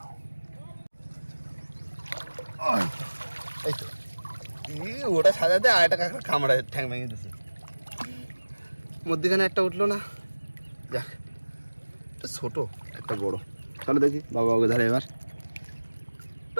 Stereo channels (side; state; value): both; inverted; correlation -1.00